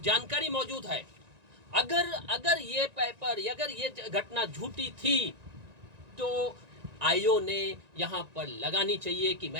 जानकारी मौजूद है। अगर ये पेपर, अगर ये घटना झूठी थी तो आईओ ने यहाँ पर लगानी चाहिए कि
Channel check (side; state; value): left; late; 1.9 ms